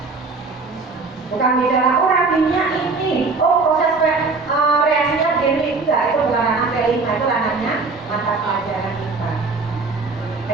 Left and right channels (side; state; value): left; quieter; 4.0 dB